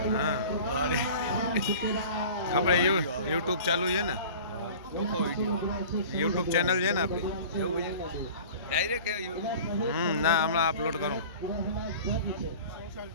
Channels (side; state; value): both; inverted; correlation -0.41